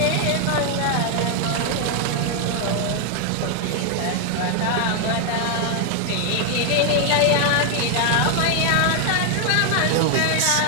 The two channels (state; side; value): different; both; correlation 0.00